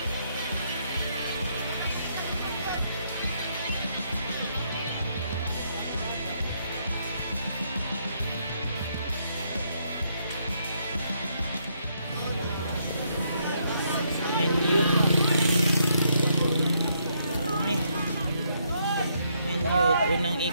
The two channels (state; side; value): inverted; both; correlation -0.74